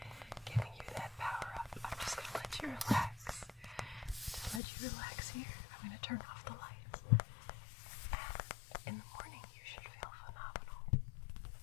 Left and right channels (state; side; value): drops out; right; at 4.6 s